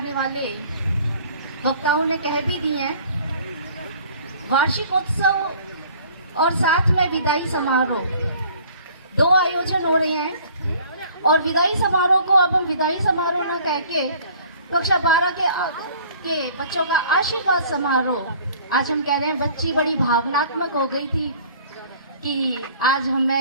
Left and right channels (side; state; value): both; inverted; correlation -0.52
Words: वाले वक्ताओं ने कह भी दी हैं। वार्षिकोत्सव और साथ में विदाई समारोह, दो आयोजन हो रहे हैं और विदाई समारोह को अब हम विदाई समारोह न कह के कक्षा 12 के बच्चों का आशीर्वाद समारोह आज हम कह रहे हैं। बच्ची बड़ी भावनात्मक हो गई थी कि आज